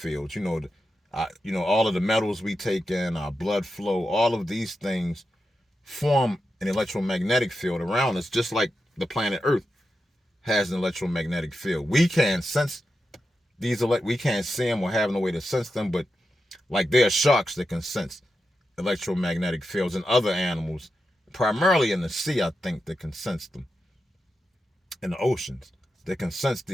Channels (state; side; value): normal; both; correlation 0.89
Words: All of the metals we take in, our blood flow, all of these things form an electromagnetic field around us, just like the planet Earth has an electromagnetic field. We can sense we can't see them or have no way to sense them, but like there are sharks that can sense electromagnetic fields, and other animals, primarily in the sea, I think, that can sense them. In the oceans, that can sense